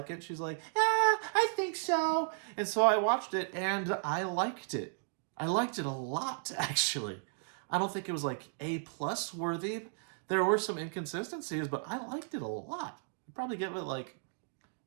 it? She's like, I think so. And so I watched it, and I liked it. I liked it a lot, actually. I don't think it was like A+ worthy. There were some inconsistencies, but I liked it a lot. I'd probably give it like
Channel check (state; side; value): silent; left; digital silence